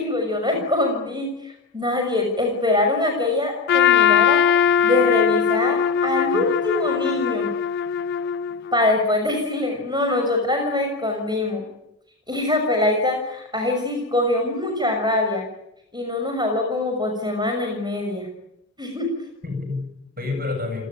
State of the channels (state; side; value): quieter; right; 3.8 dB